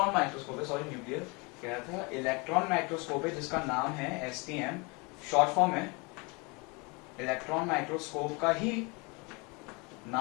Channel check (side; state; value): right; quieter; 28.7 dB